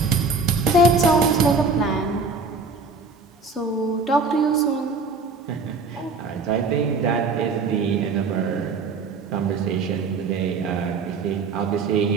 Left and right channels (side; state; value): left; quieter; 4.1 dB